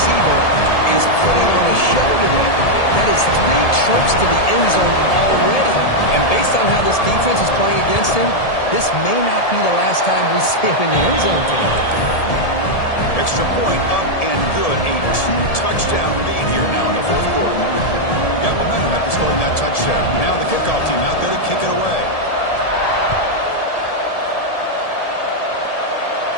is putting on a show today. That is 3 trips to the end zone already. And based on how this defense is playing against him, this may not be the last time we see him in the end zone today. Extra point up and good. A 2-touchdown lead here now in the fourth quarter. Got momentum after scoring that touchdown. Now the kickoff team out there to kick it away.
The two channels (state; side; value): late; right; 1.7 ms